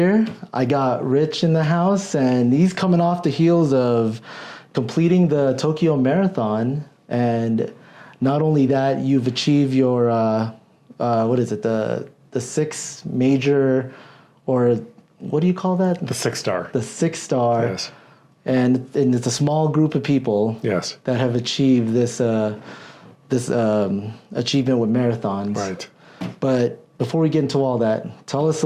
I got Rich in the house, and he's coming off the heels of completing the Tokyo Marathon. And not only that, you've achieved your, the six major, or what do you call that? The 6-star. The 6-star. Yes. And it's a small group of people. Yes. That have achieved this achievement with marathons. Right. But before we get into all that, tell us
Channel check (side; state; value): both; identical; correlation 1.00